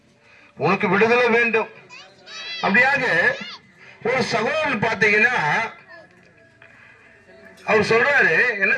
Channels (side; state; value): both; identical; correlation 1.00